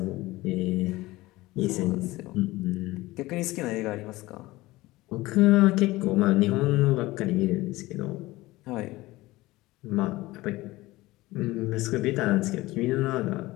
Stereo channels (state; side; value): quieter; right; 19.1 dB